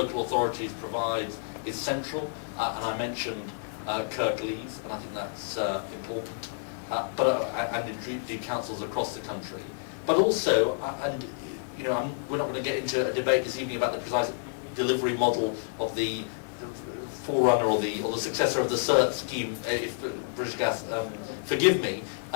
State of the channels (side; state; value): right; silent; 58 dB below the other